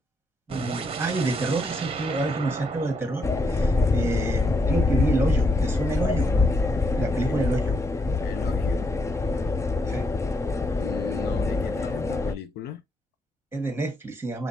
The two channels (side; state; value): both; normal; correlation 0.77